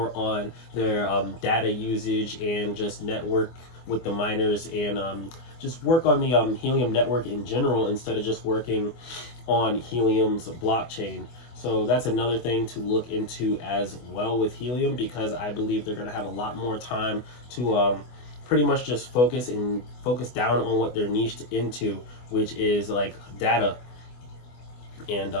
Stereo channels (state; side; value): late; right; 24 ms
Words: on their data usage and just network with the miners, and just work on the Helium network in general instead of just working on Helium's blockchain. So that's another thing to look into as well with Helium, because I believe they're going to have a lot more time to pretty much just focus down on what they're niched into, which is like data, and